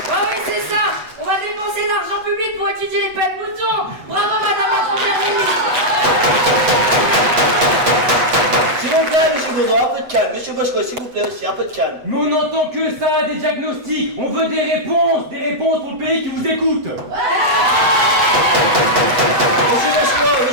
Oui, c'est ça. On va dépenser l'argent public pour étudier les pets de moutons. Bravo, madame la première ministre. S'il vous plaît, monsieur Baudouin, un peu de calme. Monsieur Boschko, s'il vous plaît aussi, un peu de calme. Mais on n'entend que ça, des diagnostics. On veut des réponses pour le pays qui vous écoute.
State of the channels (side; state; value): left; late; 8.1 ms